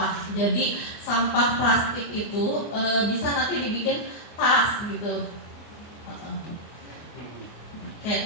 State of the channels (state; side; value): late; right; 24 ms